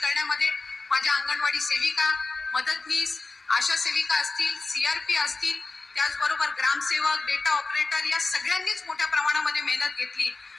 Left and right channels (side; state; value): right; quieter; 3.6 dB